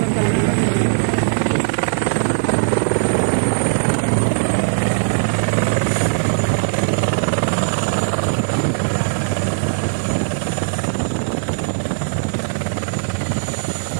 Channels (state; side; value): silent; left; digital silence